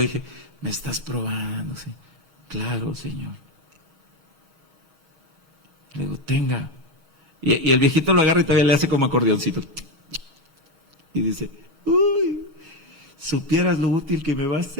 me estás probando, ¿sí? Claro, Señor. Le digo, tenga. Y el viejito lo agarra y todavía le hace como acordeoncito. Y dice, uy, supieras lo útil que me va a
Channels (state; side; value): late; left; 6.4 ms